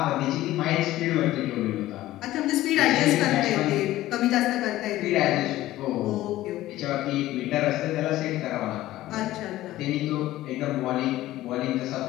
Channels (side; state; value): right; quieter; 15.5 dB